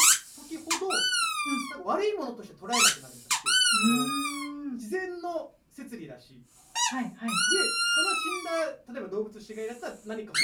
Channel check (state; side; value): identical; both; correlation 1.00